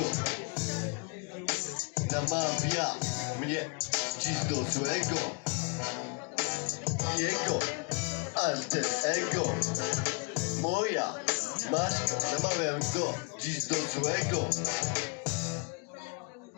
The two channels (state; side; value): quieter; right; 34.8 dB